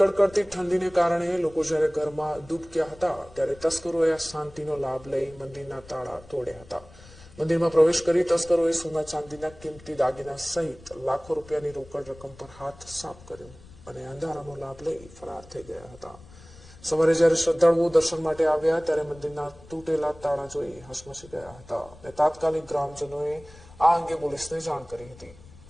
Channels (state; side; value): noise; left; rumble, 21 dB below the sound